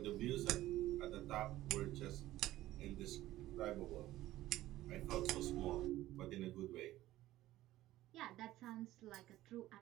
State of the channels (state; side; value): quieter; left; 15.4 dB